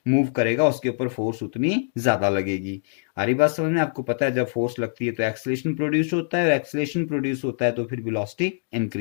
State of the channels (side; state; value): right; silent; digital silence